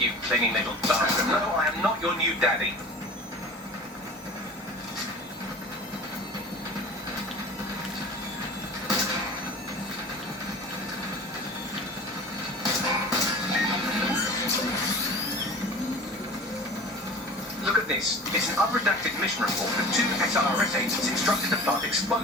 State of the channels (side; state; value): both; normal; correlation 0.39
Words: clinging little bastard. No, I am not your new daddy. Look at this. It's an unredacted mission report that 2 SRS agents instructed to plant